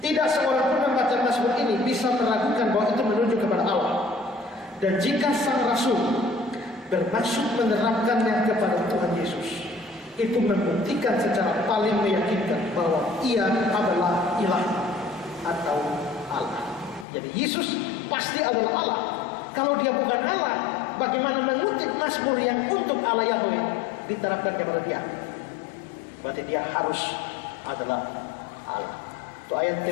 seorang pun membaca Mazmur ini bisa meragukan bahwa itu menunjuk kepada Allah. Dan jika sang rasul bermaksud menerapkannya kepada Tuhan Yesus, itu membuktikan secara paling meyakinkan bahwa ia adalah ilah atau Allah. Jadi Yesus pasti adalah Allah. Kalau dia bukan Allah, bagaimana mengutip Mazmur yang untuk Allah Yahweh diterapkan kepada dia? Berarti dia harus adalah Allah. Itu ayat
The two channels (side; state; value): right; drops out; at 17.1 s